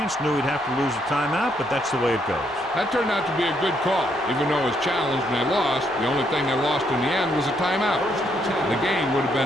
knew he'd have to lose a timeout, but that's the way it goes. That turned out to be a good call. Even though it was challenged and they lost, the only thing they lost in the end was a timeout. The game would have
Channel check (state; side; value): noise; right; rumble, 26 dB below the sound